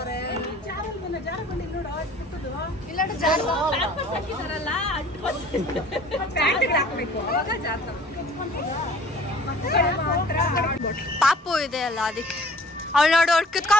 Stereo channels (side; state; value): both; normal; correlation 0.51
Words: ಇಲ್ಲ ಪಾಪು ಇದೆ ಅಲ್ಲ ಅದಕ್ಕೆ. ಅವಳು ನೋಡು, ಅವಳು